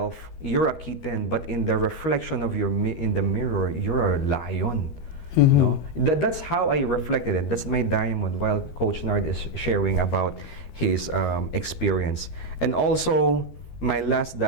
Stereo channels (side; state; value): right; late; 13 ms